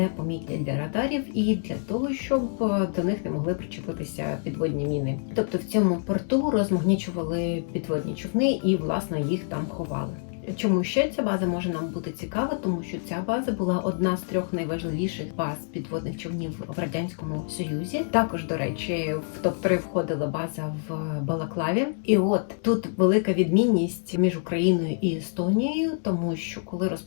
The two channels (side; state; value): right; silent; digital silence